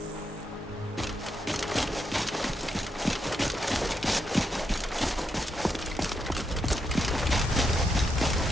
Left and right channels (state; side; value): normal; both; correlation 0.81